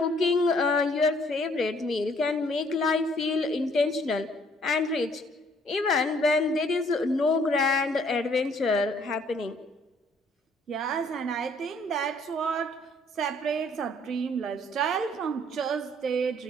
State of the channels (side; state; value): both; normal; correlation 0.62